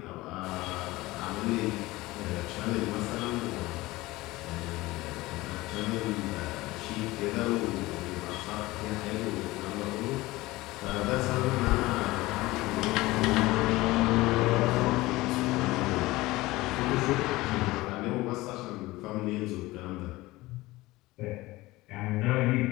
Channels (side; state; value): right; quieter; 19.5 dB